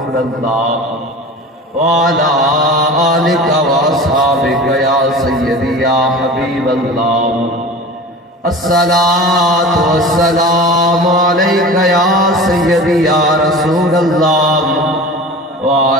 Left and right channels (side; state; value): both; normal; correlation 0.36